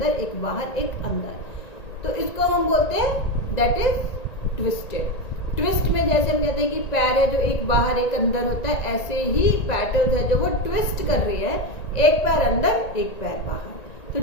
एक बाहर, एक अंदर। तो इसको हम बोलते हैं दैट इज ट्विस्टेड। ट्विस्ट में जैसे हम कहते हैं कि पैर है जो एक बाहर एक अंदर होता है, ऐसे ही पेटल्स है जो वो ट्विस्ट कर रही है, एक पैर अंदर एक पैर बाहर। तो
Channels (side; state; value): right; late; 1.9 ms